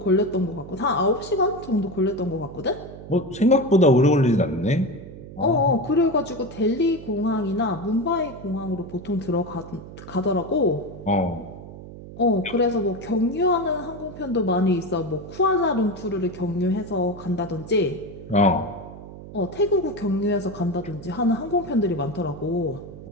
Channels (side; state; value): right; noise; hum, 14 dB below the sound